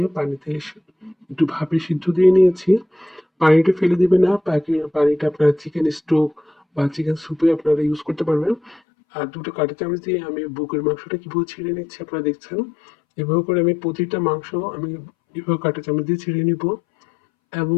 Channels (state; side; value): drops out; right; at 8.8 s